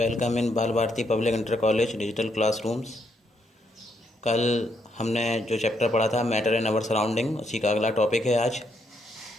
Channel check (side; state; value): both; normal; correlation 0.76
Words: in Bal Bharati public inter college digital classrooms. कल हमने जो चैप्टर पढ़ा था मैटर इन आवर सराउंडिंग, उसी का अगला टॉपिक है आज